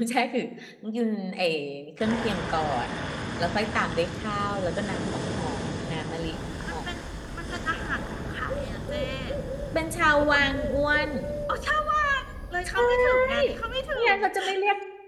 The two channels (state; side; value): identical; both; correlation 1.00